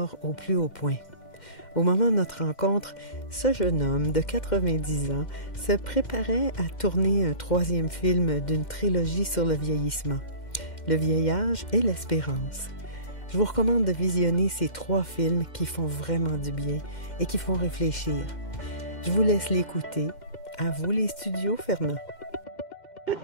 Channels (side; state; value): right; late; 2.1 ms